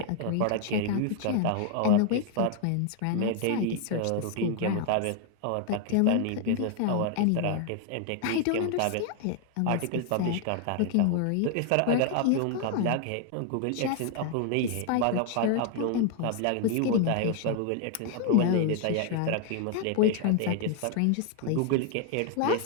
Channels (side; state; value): both; different; correlation 0.00